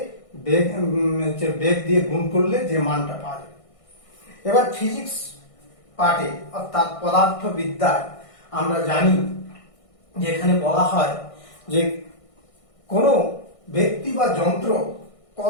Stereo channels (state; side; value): late; right; 1.6 ms